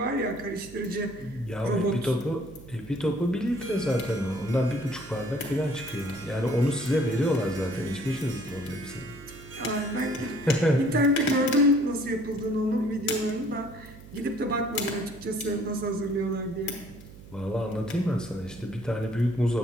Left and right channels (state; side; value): noise; right; hum, 18 dB below the sound